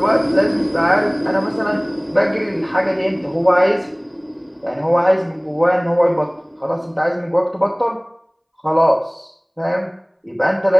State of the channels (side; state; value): both; identical; correlation 1.00